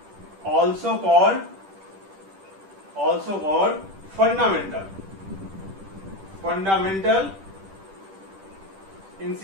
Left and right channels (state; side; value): late; left; 10 ms